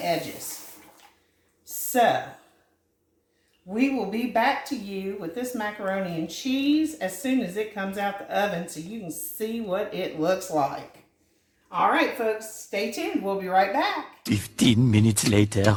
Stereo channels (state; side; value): identical; both; correlation 1.00